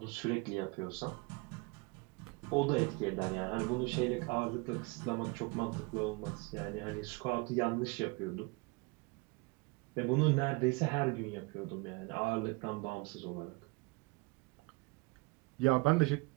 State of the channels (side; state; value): left; quieter; 26.3 dB